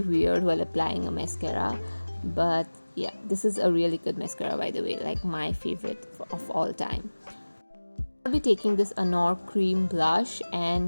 weird while applying a mascara, but yeah, this is a really good mascara, by the way, like my favorite of all time. I'll be taking this Anour cream blush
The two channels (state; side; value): inverted; both; correlation -1.00